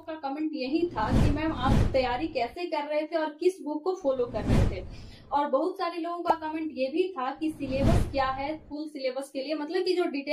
का कमेंट यही था कि मैम आप तैयारी कैसे कर रहे थे और किस बुक को फॉलो कर रहे थे। और बहुत सारे लोगों का कमेंट ये भी था कि सिलेबस क्या है, फुल सिलेबस के लिए मतलब कि जो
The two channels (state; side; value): identical; both; correlation 1.00